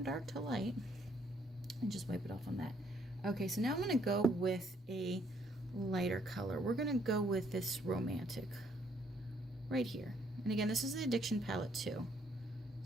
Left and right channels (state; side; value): normal; both; correlation 0.68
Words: dark to light, and just wipe it off on that. Okay, so now I'm going to go with a lighter color. We're going to go with this Romantic right here. And again, this is the Addiction palette too.